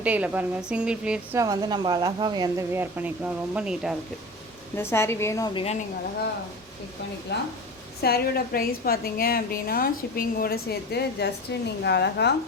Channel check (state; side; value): normal; both; correlation 0.32